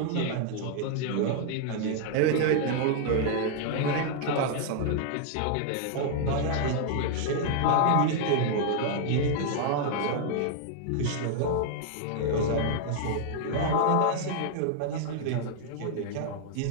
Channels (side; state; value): both; different; correlation -0.01